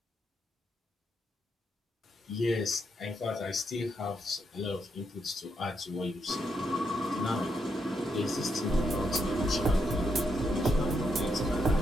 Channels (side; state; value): both; normal; correlation 0.79